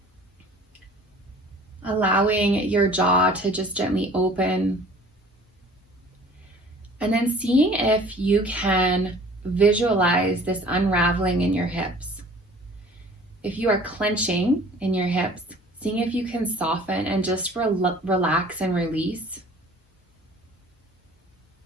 allowing your jaw to just gently open. And then seeing if you can visualize this unraveling in your hips. If you are clenching in your hips, seeing if you can soften and just relax and release.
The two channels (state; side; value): normal; both; correlation 0.49